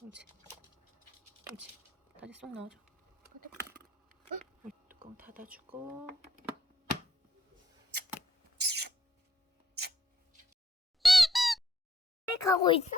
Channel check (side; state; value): both; normal; correlation 0.71